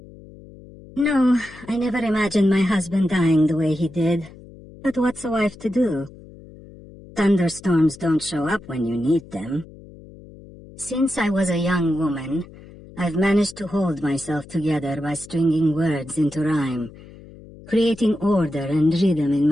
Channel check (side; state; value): left; noise; hum, 20 dB below the sound